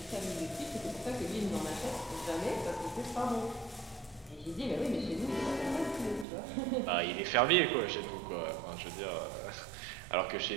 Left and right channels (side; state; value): left; drops out; at 6.2 s